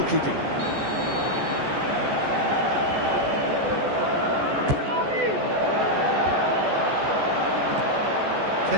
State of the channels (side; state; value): left; late; 14 ms